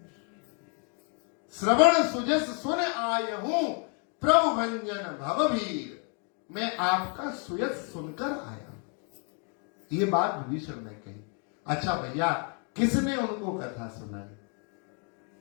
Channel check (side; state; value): right; quieter; 39.0 dB